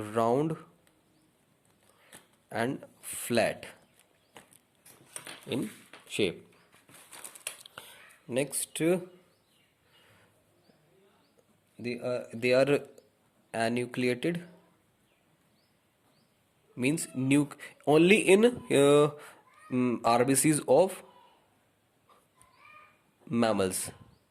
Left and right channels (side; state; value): both; identical; correlation 1.00